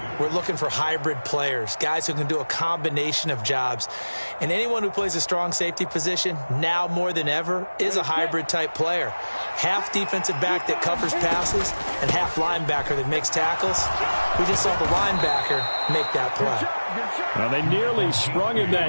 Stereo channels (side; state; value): both; inverted; correlation -1.00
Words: we're looking for hybrid players, guys who can do a combination of jobs. And anyone who plays a strong safety position, now more than ever, is a hybrid-type player. Half defensive back that covers passes and half linebacker that makes tackles. We just saw the linebacker make that play. Well, they nearly sprung him